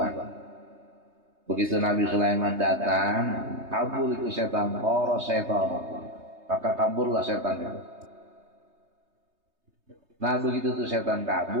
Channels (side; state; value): left; late; 3.2 ms